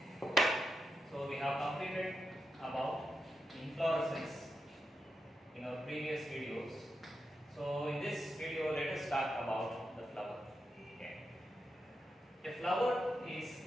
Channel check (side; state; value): both; normal; correlation 0.87